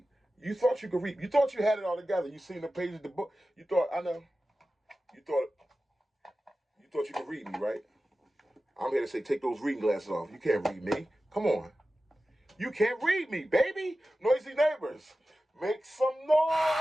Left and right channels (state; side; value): normal; both; correlation 0.94